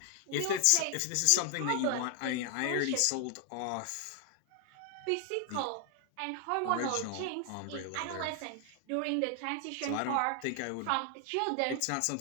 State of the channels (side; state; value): both; different; correlation 0.00